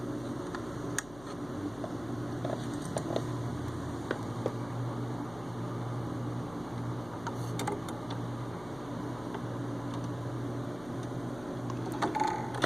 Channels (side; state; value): left; noise; hum, 17 dB below the sound